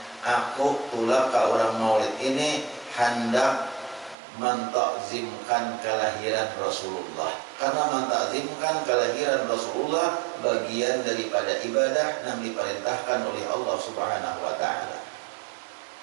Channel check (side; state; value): left; drops out; at 4.2 s